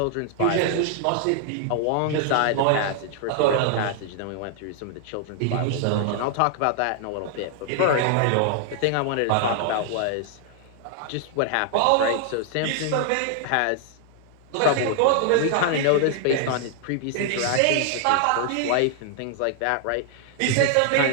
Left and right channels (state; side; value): different; both; correlation 0.00